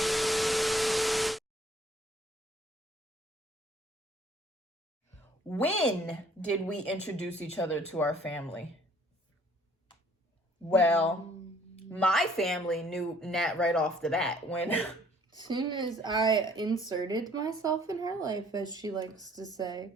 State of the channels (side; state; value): both; normal; correlation 0.58